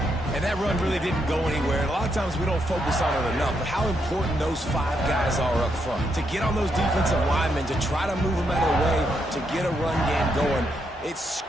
And that run really didn't go anywhere. And a lot of times we don't focus on it enough, but how important those 5 guys are up front. To get on those defensive linemen, to try to move them out of the way, to get a run game going, it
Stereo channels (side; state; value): both; normal; correlation 0.79